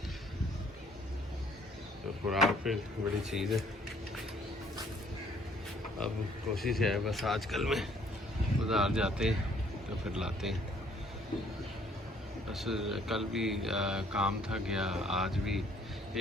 तो खुराक पे बड़ी चीज़ है। अब कोशिश है बस आजकल में बाज़ार जाते हैं तो फिर लाते हैं। बस कल भी काम था गया, आज भी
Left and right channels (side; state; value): both; normal; correlation 0.62